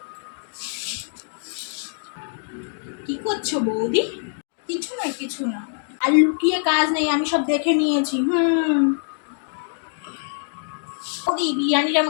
কি করছো বৌদি? কিছু না কিছু না, আর লুকিয়ে কাজ নেই, আমি সব দেখে নিয়েছি। বৌদি বিরিয়ানিটা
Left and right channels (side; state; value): right; silent; 63 dB below the other